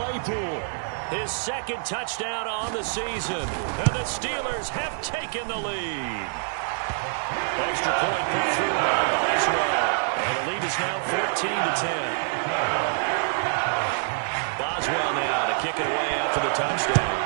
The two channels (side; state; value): left; silent; digital silence